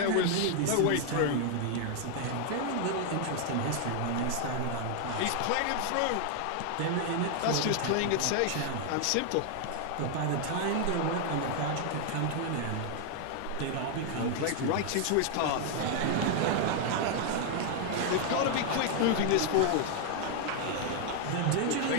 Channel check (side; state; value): both; different; correlation 0.00